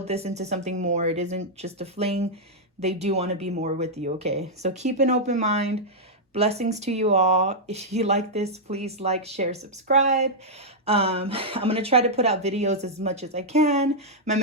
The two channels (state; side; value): normal; both; correlation -0.06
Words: this into something more. It isn't just a fling. They do want to be more with you, okay? So keep an open mind. Blessings to you all. If you like this, please like, share, subscribe. I'm going to try to put out videos as much as I can. My